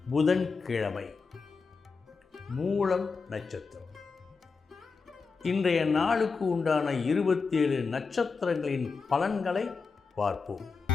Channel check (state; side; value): quieter; right; 4.8 dB